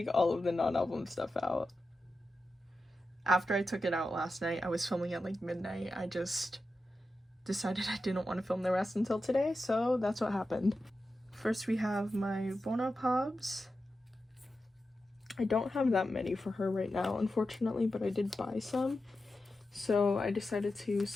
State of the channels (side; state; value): both; normal; correlation 0.91